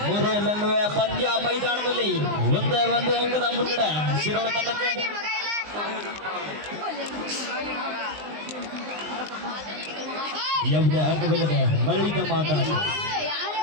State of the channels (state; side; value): late; left; 19 ms